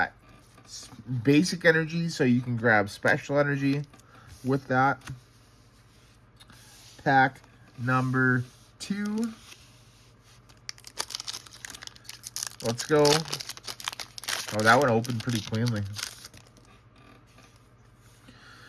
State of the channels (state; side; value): identical; both; correlation 1.00